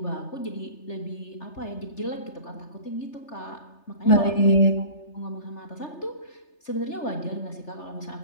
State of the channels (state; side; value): late; right; 3.3 ms